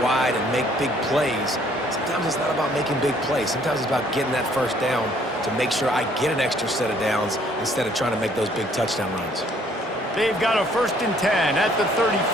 wide and make big plays. Sometimes it's not about making big plays. Sometimes it's about getting that first down to make sure I get an extra set of downs instead of trying to make those big touchdown runs. They've got a 1st and 10 at the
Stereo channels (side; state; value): both; normal; correlation 0.62